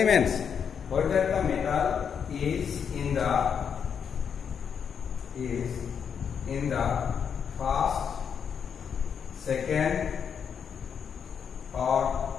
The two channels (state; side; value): quieter; right; 7.2 dB